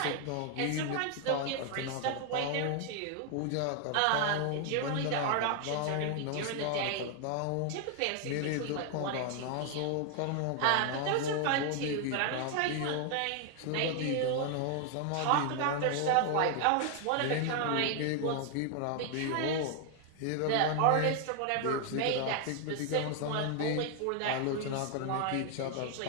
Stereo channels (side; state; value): both; different; correlation 0.00